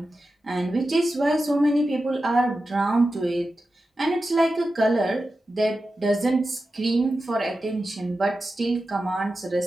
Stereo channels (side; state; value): both; normal; correlation 0.92